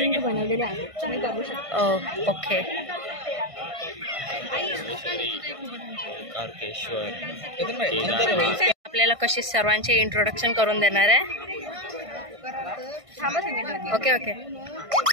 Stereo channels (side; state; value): left; late; 1.5 ms